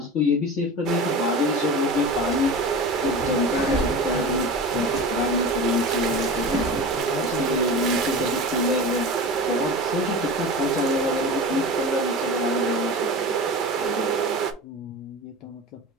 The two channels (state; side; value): normal; both; correlation 0.31